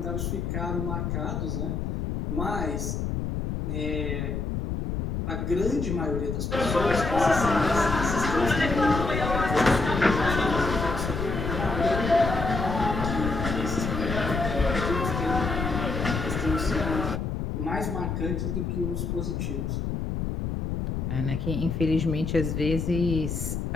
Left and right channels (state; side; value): noise; left; rumble, 2 dB below the sound